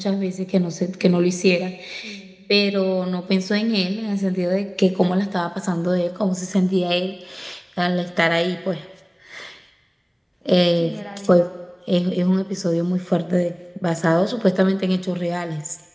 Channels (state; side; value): identical; both; correlation 1.00